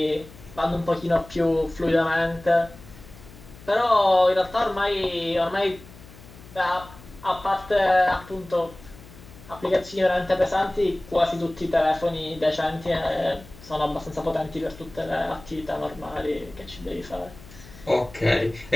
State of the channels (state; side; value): noise; left; hum, 20 dB below the sound